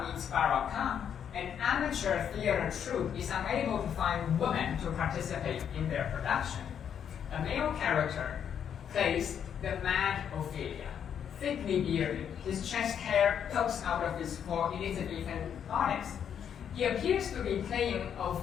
meets Barakah, an amateur theater troupe is unable to find women to participate in their production. A male character plays the mad Ophelia, thickly bearded, his chest hair pokes out of his full Elizabethan bodice. He appears to be playing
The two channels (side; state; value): right; quieter; 8.4 dB